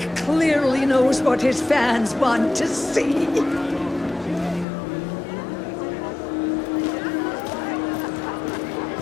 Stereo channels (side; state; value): right; drops out; at 4.7 s